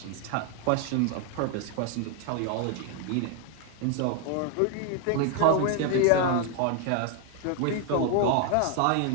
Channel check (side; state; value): both; different; correlation 0.01